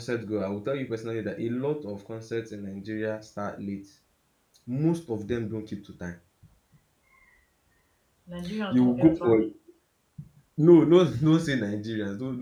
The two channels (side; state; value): both; identical; correlation 1.00